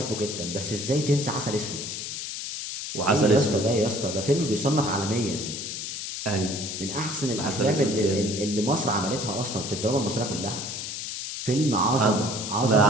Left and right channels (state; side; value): noise; left; hiss, 6 dB below the sound